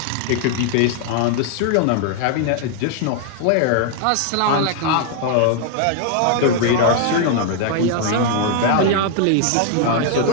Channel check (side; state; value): both; different; correlation 0.00